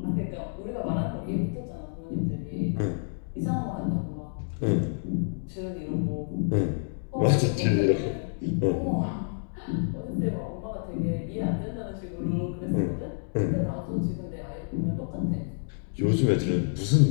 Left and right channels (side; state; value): right; silent; digital silence